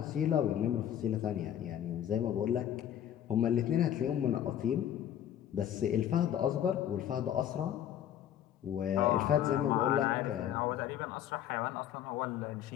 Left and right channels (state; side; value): quieter; right; 10.6 dB